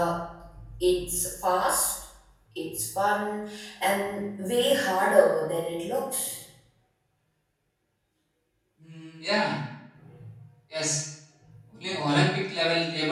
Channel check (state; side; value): identical; both; correlation 1.00